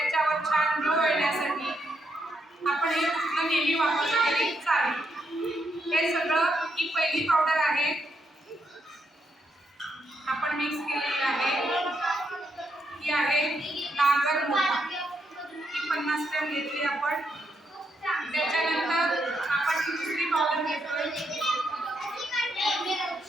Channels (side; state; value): both; normal; correlation 0.79